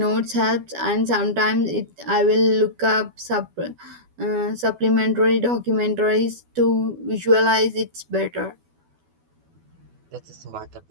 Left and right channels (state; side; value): late; left; 12 ms